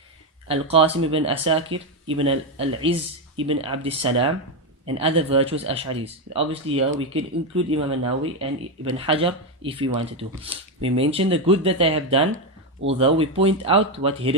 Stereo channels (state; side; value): normal; both; correlation 0.08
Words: Al-Qasim ibn Asakir, Ibn al-Izz ibn Abd salam, and other virtuous Ash'aris. Obviously here we could include Imam an-Nawawi and Ibn Hajar if we wanted to. We mention the good that they have done, although we point out what